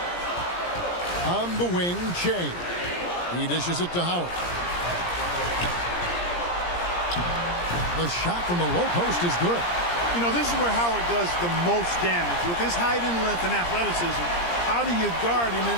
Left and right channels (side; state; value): right; late; 17 ms